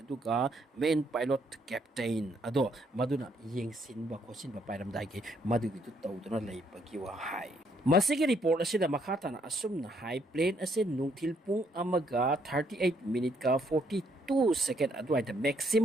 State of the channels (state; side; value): normal; both; correlation 0.70